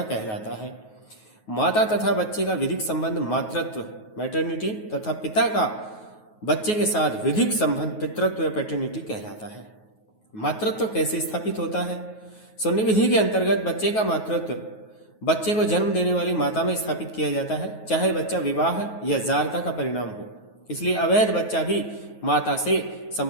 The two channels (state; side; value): late; right; 9.3 ms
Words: कहलाता है। माता तथा बच्चे का विधिक संबंध मातृत्व, मैटरनिटी, तथा पिता का बच्चे के साथ विधिक संबंध पितृत्व या पैटर्निटी कहलाता है। मातृत्व कैसे स्थापित होता है? सुन्नी विधि के अंतर्गत बच्चे का मातृत्व बच्चे को जन्म देने वाली माता में स्थापित किया जाता है, चाहे बच्चा विवाह या जारता का परिणाम हो। इसलिए अवैध बच्चा भी माता से